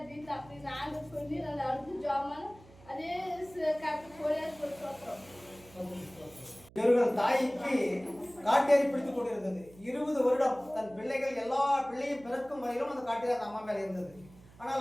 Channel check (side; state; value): right; noise; hum, 23 dB below the sound